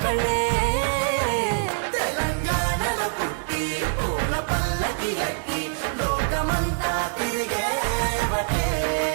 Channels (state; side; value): silent; left; digital silence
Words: కళ్ళే. తెలంగాణల పుట్టి పూల పల్లకి ఎక్కి లోకమంతా తిరిగే